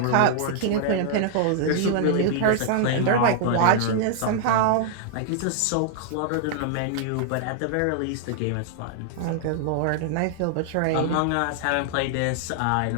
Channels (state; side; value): different; both; correlation -0.01